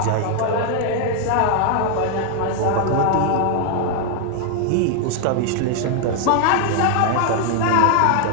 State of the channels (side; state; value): both; different; correlation 0.00